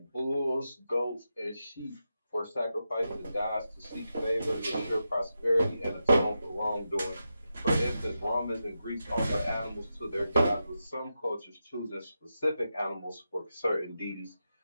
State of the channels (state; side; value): inverted; both; correlation -0.88